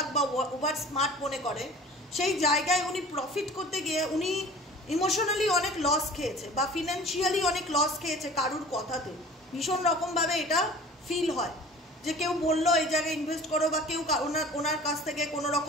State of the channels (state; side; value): normal; both; correlation 0.44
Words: বা ওভার স্মার্ট মনে করে, সেই জায়গায় উনি প্রফিট করতে গিয়ে উনি ইমোশনালি অনেক লস খেয়েছে বা ফিনান্সিয়ালি অনেক লস খেয়েছে কারুর কথাতে। ভীষণ রকমভাবে এটা ফিল হয় যে কেউ বললো এই জায়গায় ইনভেস্ট করো, বা কেউ ওনার কাছ থেকে কোনো